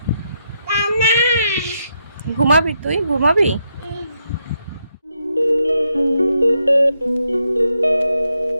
ঘুমাবি? তুই ঘুমাবি?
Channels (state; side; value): inverted; both; correlation -0.80